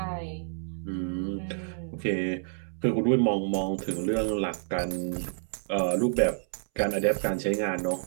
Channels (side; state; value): left; silent; 59 dB below the other